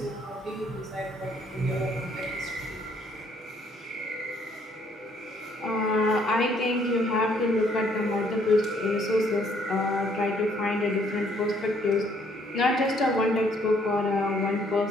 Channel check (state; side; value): normal; both; correlation 0.66